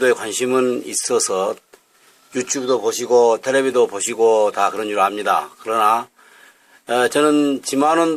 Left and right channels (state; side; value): identical; both; correlation 1.00